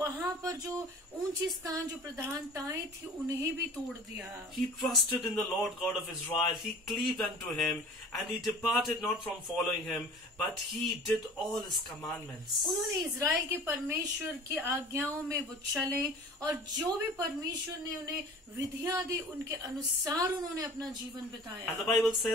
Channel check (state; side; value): normal; both; correlation 0.43